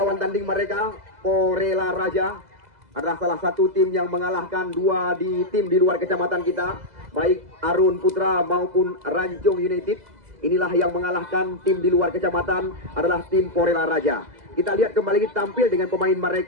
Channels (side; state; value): left; late; 2.0 ms